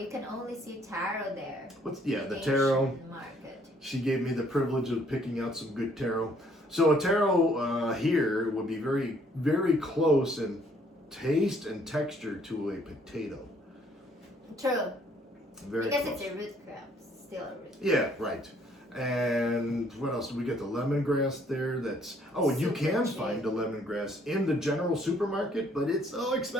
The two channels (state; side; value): normal; both; correlation 0.64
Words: can only see taro there. The taro. Asian market. She gave me the privilege of picking out some good taro. So a taro here would be very, very close in taste and texture to a potato. True. Very Because close. it's a root crop, still a root. Yeah, right. And what else? We get the lemongrass there. And you Super can cheap. find the lemongrass in the general supermarket, but it's so